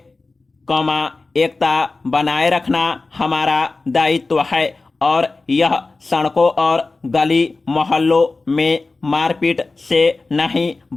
एकता बनाए रखना हमारा दायित्व है और यह सड़कों और गली मोहल्लों में मारपीट से नहीं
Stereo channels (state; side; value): quieter; right; 3.6 dB